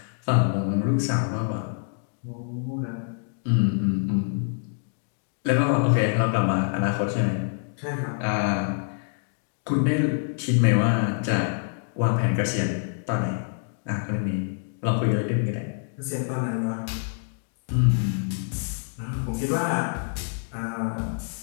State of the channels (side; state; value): right; silent; digital silence